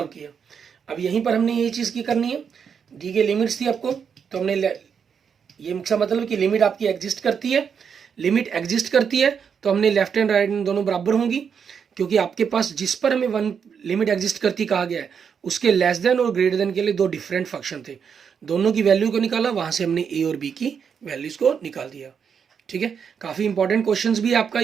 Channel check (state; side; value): quieter; left; 6.9 dB